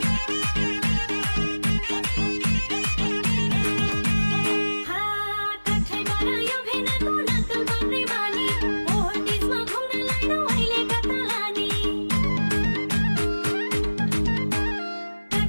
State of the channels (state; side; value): inverted; both; correlation -1.00